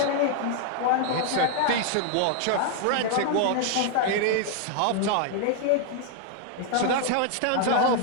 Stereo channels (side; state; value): both; different; correlation 0.00